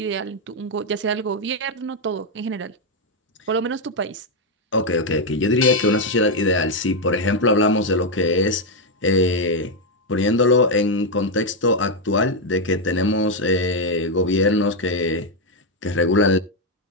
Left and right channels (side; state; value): both; normal; correlation 0.02